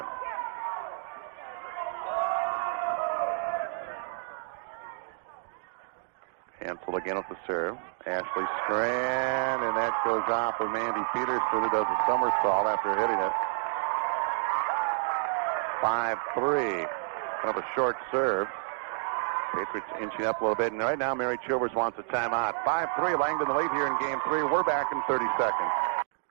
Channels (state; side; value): silent; left; digital silence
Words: Hansel again with the serve. Ashley Strand, and that goes off of Mandy Peterson, who does a somersault after hitting it. 5-3. Kind of a short serve. Patriots inching up a little bit, and right now Mary Chilvers wants a timeout. 5-3, Langdon the lead here in Game 3. We're back in 30 seconds.